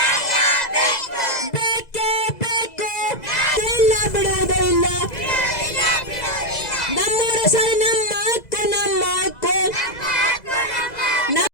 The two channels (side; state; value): right; late; 2.0 ms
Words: ಬೇಕೇ ಬೇಕು, ಇಲ್ಲ ಬಿಡುವುದೇ ಇಲ್ಲ. ನಮ್ಮೂರ ಶಾಲೆ ನಮ್ಮ ಹಕ್ಕು, ನಮ್ಮ ಹಕ್ಕು.